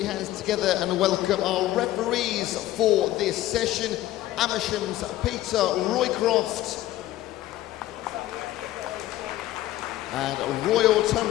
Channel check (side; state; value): right; quieter; 15.0 dB